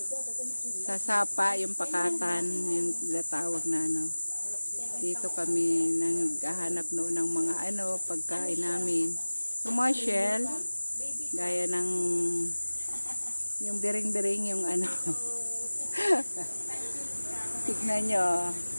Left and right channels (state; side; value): inverted; both; correlation -1.00